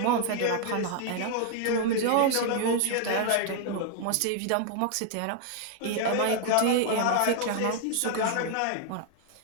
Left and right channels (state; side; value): different; both; correlation 0.00